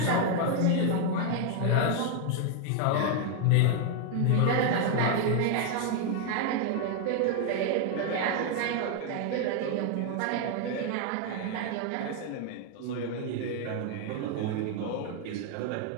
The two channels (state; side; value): different; both; correlation 0.00